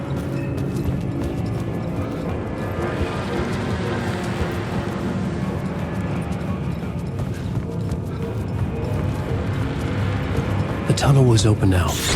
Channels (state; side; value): identical; both; correlation 1.00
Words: The tunnel was open now.